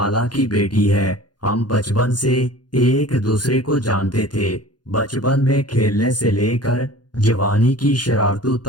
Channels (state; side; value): late; right; 0.70 ms